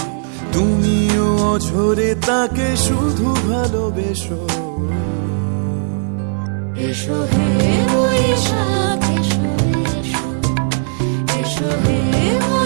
তুমিও অঝরে তাকে শুধু ভালোবেসো, এসো হে বৈশাখ এসো এসো, এসো হে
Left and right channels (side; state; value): left; silent; digital silence